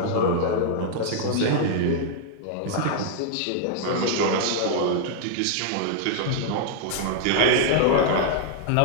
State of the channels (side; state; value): both; different; correlation -0.01